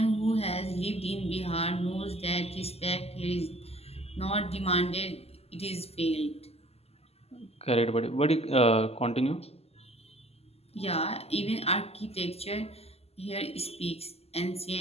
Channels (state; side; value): late; right; 0.29 ms